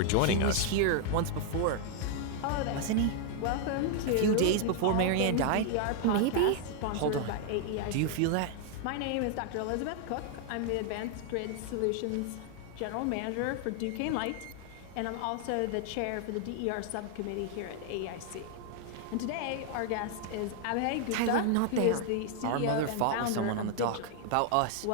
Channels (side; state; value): both; different; correlation 0.00